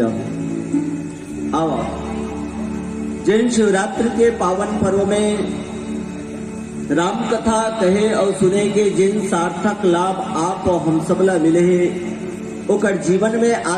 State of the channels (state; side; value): identical; both; correlation 1.00